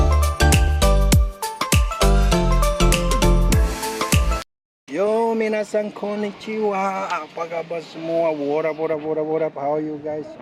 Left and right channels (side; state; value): both; identical; correlation 1.00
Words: Yo, minasan konnichiwa. Apa kabar semua? What up? How you guys